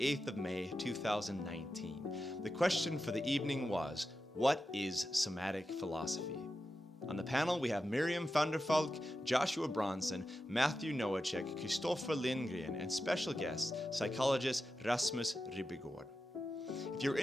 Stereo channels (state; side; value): normal; both; correlation 0.91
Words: of May, 2019. The question for the evening was, what is Somatic Philosophy? On the panel we have Miriam van der Valk, Joshua Bronson, Matthew Nowachek, Christoffer Lindgren, and special guest, psychologist Rasmus Ribbegårdh. If you're